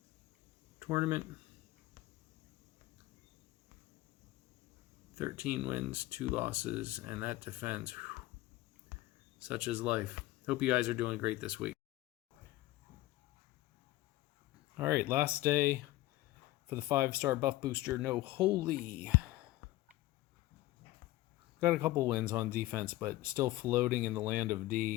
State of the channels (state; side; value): quieter; right; 17.1 dB